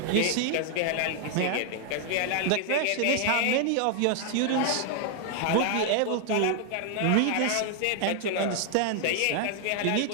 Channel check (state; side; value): different; both; correlation 0.00